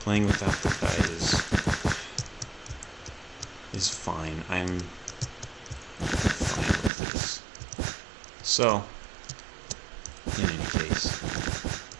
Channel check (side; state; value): left; drops out; at 6.9 s